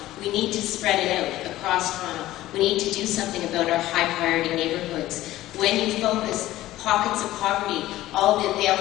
We need to spread it out across Toronto. We need to do something about our high priority neighborhoods. When you focus pockets of poverty, all the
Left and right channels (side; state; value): right; quieter; 15.5 dB